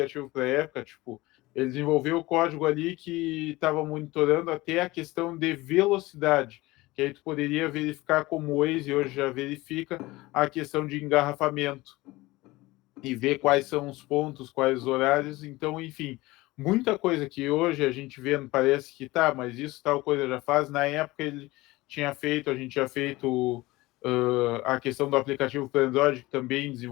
para a época, tipo, ele desenvolveu o código ali que estava monitorando até a questão de velocidade, que aí tu poderia verificar como o Waze hoje já verifica a questão de engarrafamento e ver quais são os pontos, quais os horários. Então, enfim, muita coisa que hoje a gente vê, parece que tá, mas isso tal coisa já faz. Na época ele tinha feito, a gente tinha feito a questão do aplicativo para Android, que também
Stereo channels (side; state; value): right; quieter; 20.2 dB